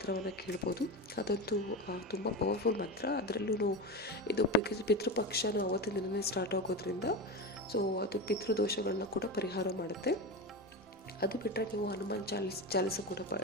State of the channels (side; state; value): both; normal; correlation 0.22